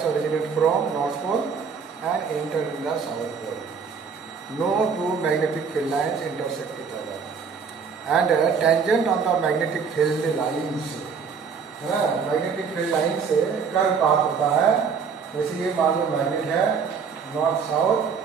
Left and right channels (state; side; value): quieter; left; 6.0 dB